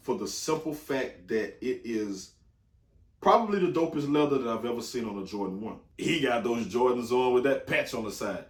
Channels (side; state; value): both; identical; correlation 1.00